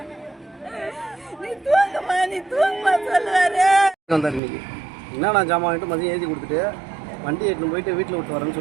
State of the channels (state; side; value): drops out; left; at 4.4 s